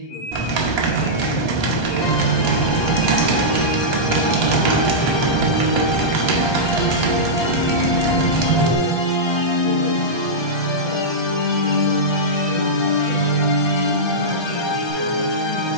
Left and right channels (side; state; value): right; late; 1.3 ms